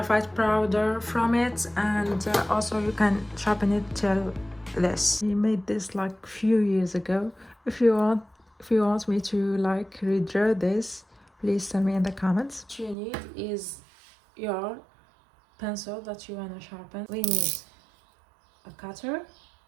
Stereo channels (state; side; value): drops out; left; at 13.0 s